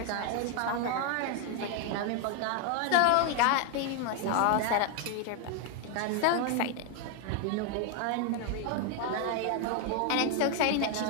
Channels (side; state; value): both; different; correlation 0.01